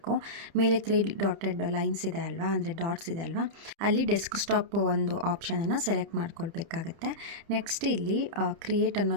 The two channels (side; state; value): left; late; 30 ms